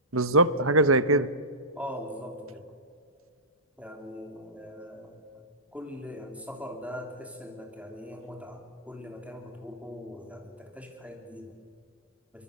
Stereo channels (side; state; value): both; normal; correlation -0.19